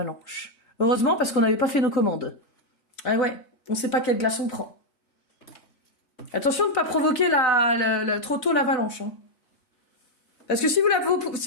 Heureusement, parce qu'on n'avait pas fait nos commandes. Ah ouais, on sait pas quelle glace on prend. Attention de ne pas provoquer trop tôt l'avalanche. Hein. Parce que si vous la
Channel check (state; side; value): late; right; 4.0 ms